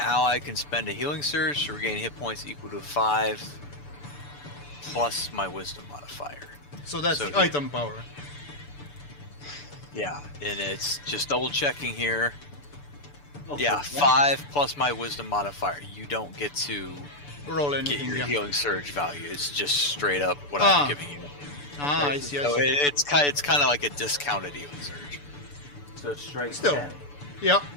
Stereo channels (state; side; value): late; right; 6.9 ms